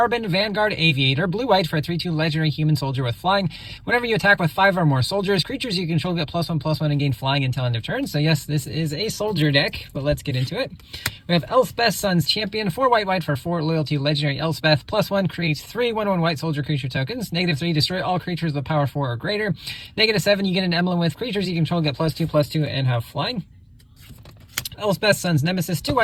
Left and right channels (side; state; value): both; identical; correlation 1.00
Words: Vanguard, Aviator, blue-white for a 3/2 legendary human soldier with flying. Whenever you attack with 5 or more soldiers, creatures you control get +1/+1 and gain flying until end of turn. So yes, this is a soldier deck, but let's get into it. We have Elspeth's Son's Champion, 4 white for 4 loyalty legendary Elspeth, +1 creates 3 1/1 white soldier creature tokens, -3 destroy all creatures with power 4 or greater, -7 you get an emblem with creatures you control get +2/+2 and have flying. Elspeth's Son's Nemesis, 2